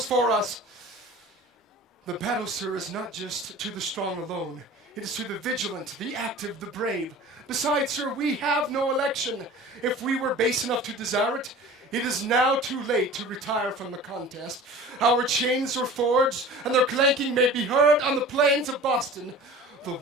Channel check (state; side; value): normal; both; correlation 0.40